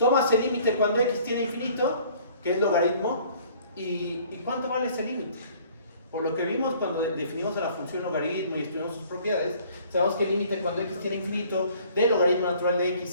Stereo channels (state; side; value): inverted; both; correlation -0.55